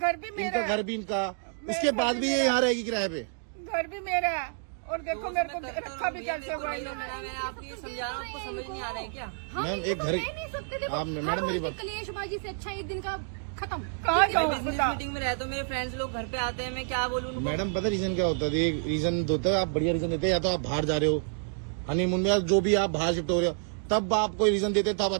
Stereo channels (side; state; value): left; silent; digital silence